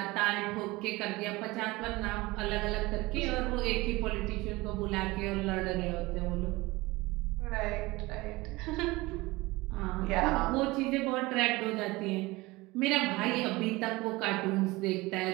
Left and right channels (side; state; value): left; quieter; 21.5 dB